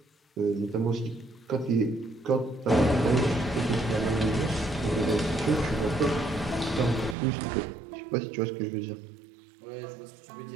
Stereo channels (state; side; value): drops out; left; at 7.2 s